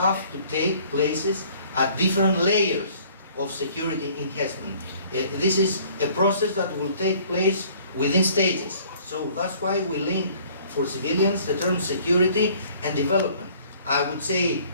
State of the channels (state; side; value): inverted; both; correlation -0.55